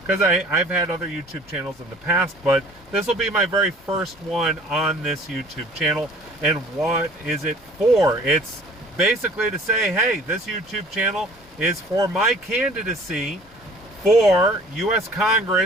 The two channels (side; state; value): both; normal; correlation 0.50